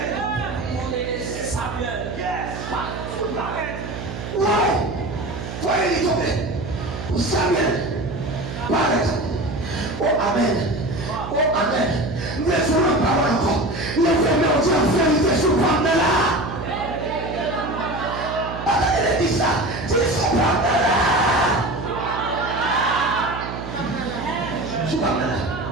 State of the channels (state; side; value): noise; right; hum, 8 dB below the sound